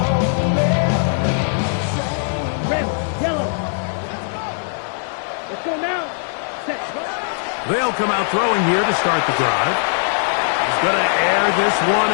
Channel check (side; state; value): right; silent; digital silence